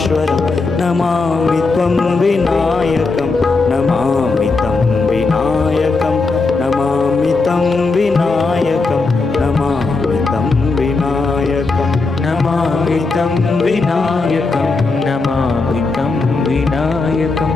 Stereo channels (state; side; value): quieter; right; 3.9 dB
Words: नमामि त्वं विनायकं नमामि तं विनायकं नमामि तं विनायकं नमामि तं विनायकं नमामि तं विनायकं नमामि तं विनायकं